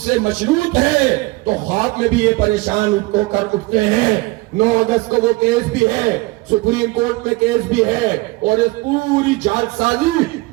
مشروط ہے. تو خواب میں بھی یہ پریشان ہو کر اٹھتے ہیں. 9 اگست کو وہ کیس بھی ہے, سپریم کورٹ میں کیس بھی ہے, اور اس پوری جال سازی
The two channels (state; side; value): quieter; left; 22.5 dB